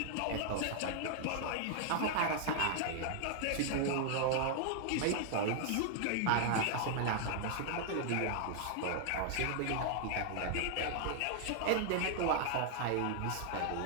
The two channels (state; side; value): different; both; correlation 0.00